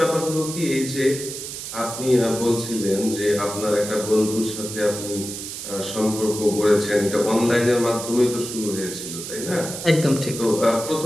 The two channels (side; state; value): right; noise; hiss, 8 dB below the sound